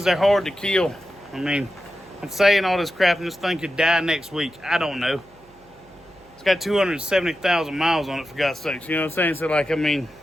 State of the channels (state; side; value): noise; right; hum, 29 dB below the sound